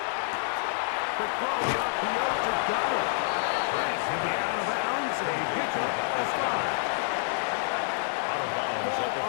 Quick throw, the RPO to Goddard. And he'll be out of bounds. A pickup of 5. Out of bounds Ball at the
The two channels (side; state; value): right; silent; digital silence